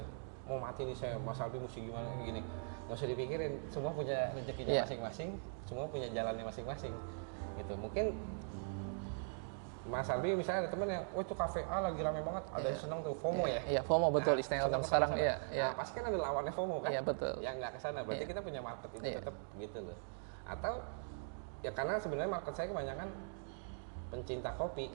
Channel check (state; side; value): silent; left; digital silence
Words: Mau mati nih saya, Mas Arbi mesti gimana kayak gini. Nggak usah dipikirin, semua punya rezekinya Iya. masing-masing, semua punya jalannya masing-masing. Gitu. Mungkin Mas Arbi misalnya ada teman yang, wah itu kafe A lagi rame banget, ada yang seneng tuh FOMO ya. Iya, FOMO betul istilah seneng sekarang. kesana. Iya, iya. Nah, pasti kan ada lawannya FOMO kan? Iya, betul. Yang nggak kesana, berarti kita punya market itu Iya. tetap gitu loh. Atau ya karena sebenarnya market saya kebanyakan pencinta